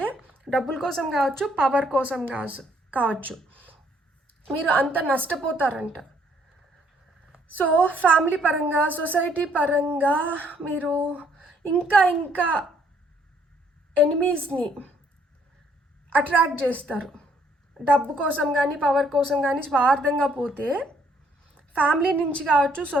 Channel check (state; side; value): normal; both; correlation 0.66